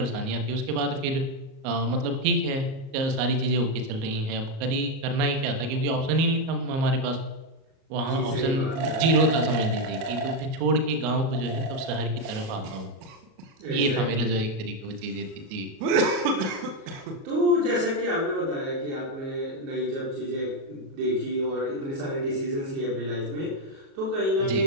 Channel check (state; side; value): late; left; 38 ms